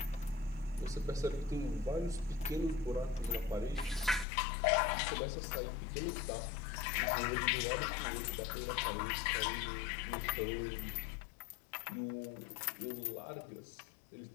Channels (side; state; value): right; drops out; at 4.2 s